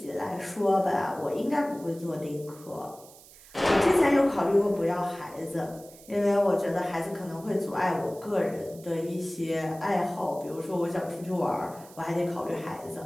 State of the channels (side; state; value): right; noise; hiss, 21 dB below the sound